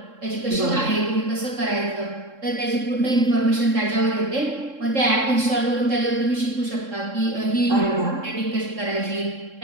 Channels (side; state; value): left; late; 3.7 ms